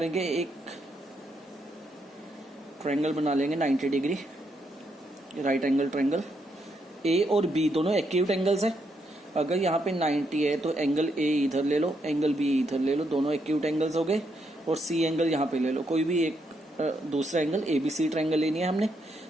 एक ट्रायंगल बना लेंगे 90 डिग्री, राइट एंगल ट्रायंगल। ए और बी दोनों एक्यूट एंगल्स है। अगर यहाँ पे 90 है तो एंगल ए इधर ले लो, एंगल बी इधर ले लो, दोनों एक्यूट एंगल्स हो गए। और सी एंगल यहाँ पे ले लो, कोई भी एक दूसरा angle, A B C triangle लेनी है हमने,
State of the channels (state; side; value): normal; both; correlation 0.78